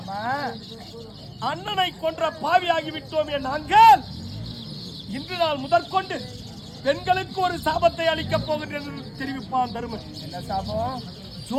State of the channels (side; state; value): both; identical; correlation 1.00